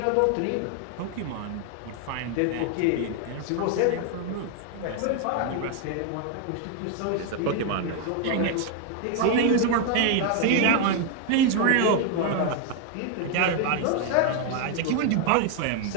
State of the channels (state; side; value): different; both; correlation 0.01